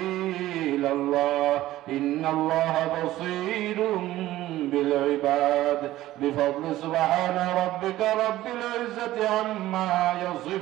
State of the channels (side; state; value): left; quieter; 15.3 dB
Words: ইলাল্লাহ ইন্নাল্লাহা বাসীরুম বিল ইবাদ বিফadli سبحان ربك رب العزة عما